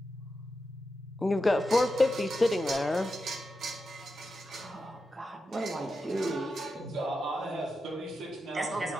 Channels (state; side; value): normal; both; correlation 0.88